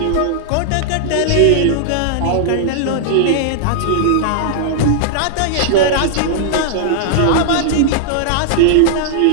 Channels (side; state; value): both; different; correlation -0.01